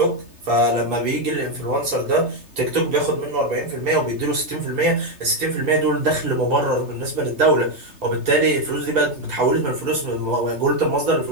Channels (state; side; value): late; left; 3.3 ms